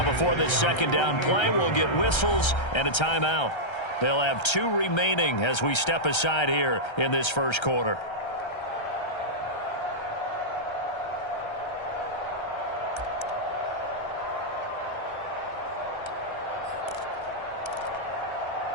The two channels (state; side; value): late; right; 1.3 ms